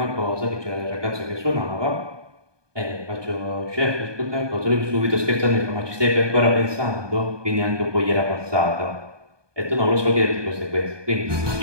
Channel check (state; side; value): late; left; 1.2 ms